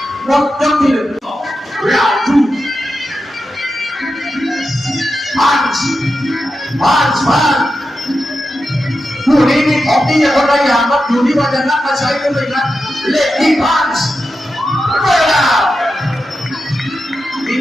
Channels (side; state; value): both; normal; correlation 0.90